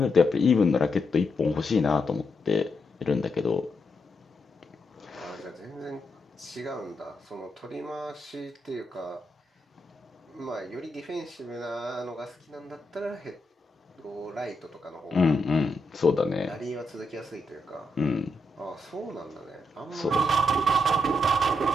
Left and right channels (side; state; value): both; normal; correlation 0.82